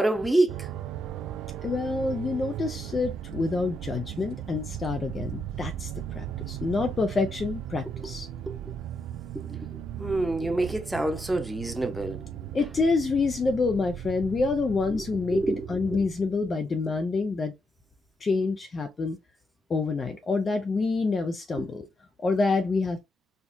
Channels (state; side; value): normal; both; correlation 0.81